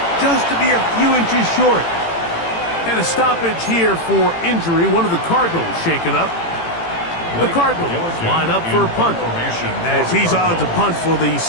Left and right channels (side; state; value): right; late; 18 ms